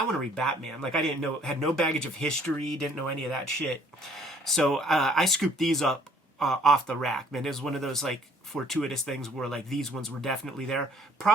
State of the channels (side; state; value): both; normal; correlation 0.59